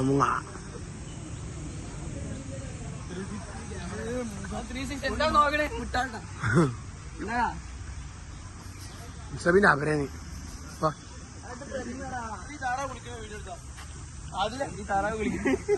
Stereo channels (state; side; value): identical; both; correlation 1.00